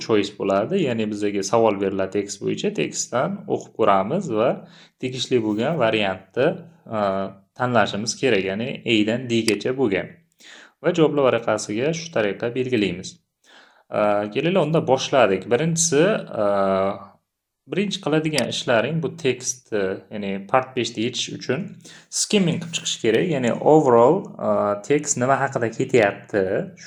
choice bo'ladi. Ya'ni bizga savol beriladi tekst bo'yicha, tekstdan o'qib ko'ramiz va tegishli bo'lgan variantni tanlashimiz kerak. Ya'ni A dan D gacha bo'lgan. Va javoblar varaqasiga shu tariqa belgilaymiz. Kelinglar unda boshladik. Birinchi qiladigan ishlaring bu tekstni, ya'ni part 5 da yechish uchun skimming qilib chiqish kerak. Ya'ni overall tekst nima haqida ketyapti,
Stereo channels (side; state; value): both; identical; correlation 1.00